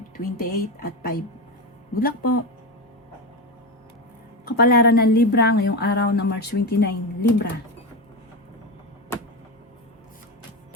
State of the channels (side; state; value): both; normal; correlation 0.16